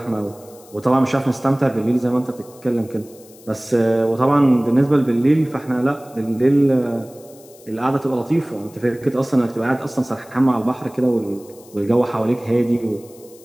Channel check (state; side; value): noise; left; hiss, 24 dB below the sound